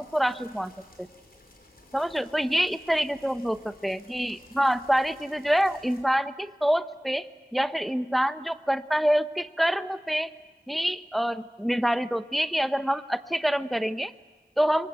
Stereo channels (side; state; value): both; normal; correlation 0.98